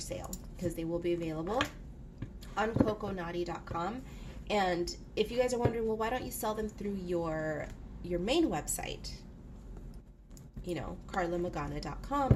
because they will be available on coconaughty.com. And if you guys are wondering, well, why don't you sell them through your main website, you know,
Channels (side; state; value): both; identical; correlation 1.00